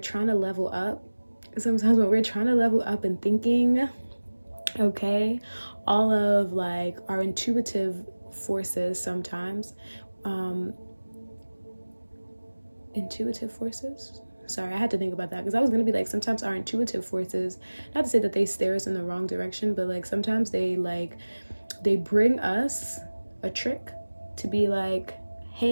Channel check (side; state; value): both; inverted; correlation -1.00